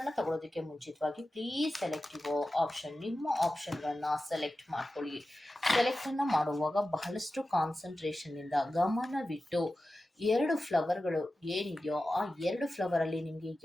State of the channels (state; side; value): normal; both; correlation 0.94